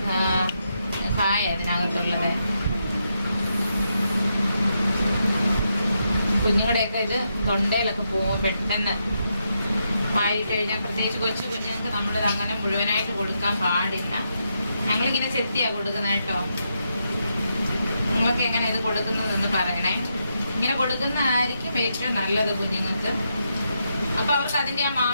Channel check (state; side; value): inverted; both; correlation -0.82